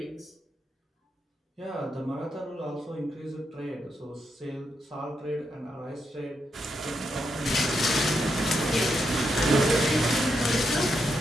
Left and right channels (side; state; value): both; normal; correlation 0.82